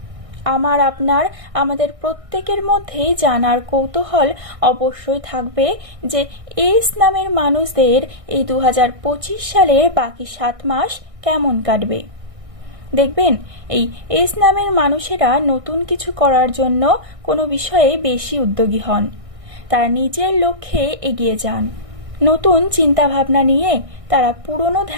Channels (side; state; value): left; late; 1.6 ms